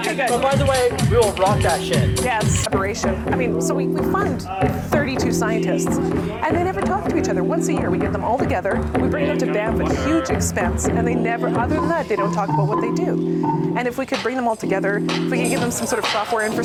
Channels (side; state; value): both; identical; correlation 1.00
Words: good. But by the way, we will rock that shit. Yes, collaboration. I mean, so we fund 32 scientists, and they never talk to each other. Once a year, we get them all together, we bring them to Banff at huge expense, and they never, other than that, they don't talk about what they do. And if we could bring them all together, if we could give them some sort of software